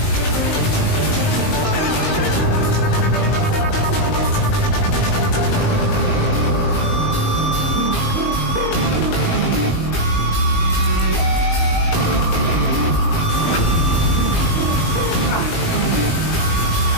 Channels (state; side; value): late; right; 19 ms